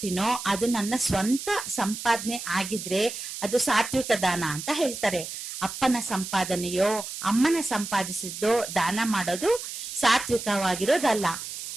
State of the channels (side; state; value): right; noise; hiss, 8 dB below the sound